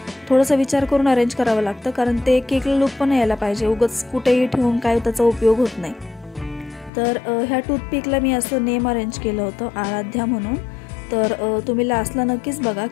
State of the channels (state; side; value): drops out; right; at 6.9 s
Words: थोडंसं विचार करून अरेंज करावं लागतं, कारण ते केकला लुक पण यायला पाहिजे. उगाच कुठेही ठेवून काय त्याचा उपयोग होत नाही. तर ह्या टूथपिकला मी असं नेम अरेंज केलं होतं, आराध्या म्हणून. तर तुम्ही लास्टला नक्कीच बघा